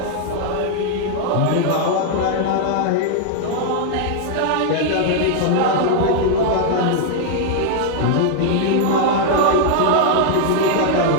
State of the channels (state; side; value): different; both; correlation 0.00